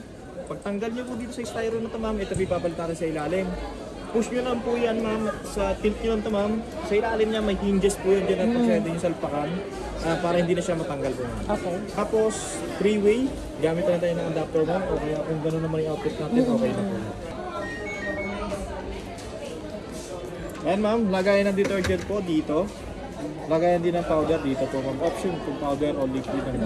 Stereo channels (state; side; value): identical; both; correlation 1.00